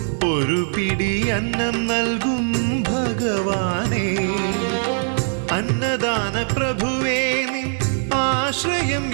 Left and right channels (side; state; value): left; silent; digital silence